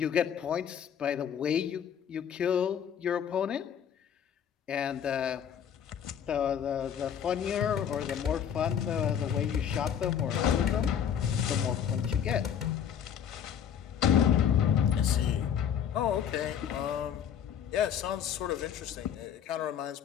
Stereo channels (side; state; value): right; quieter; 8.6 dB